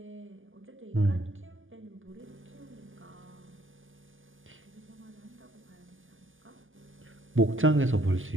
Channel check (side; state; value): left; late; 0.58 ms